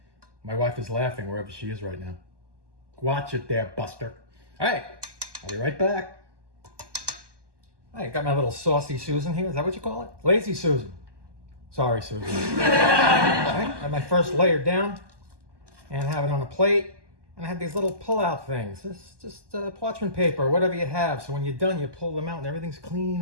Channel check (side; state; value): left; late; 1.2 ms